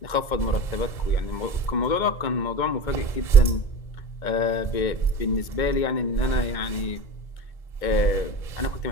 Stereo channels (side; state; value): right; late; 2.2 ms